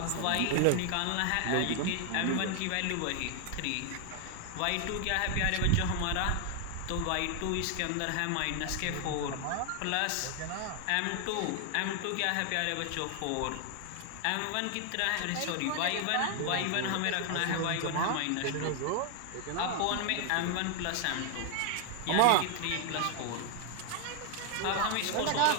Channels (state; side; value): different; both; correlation 0.00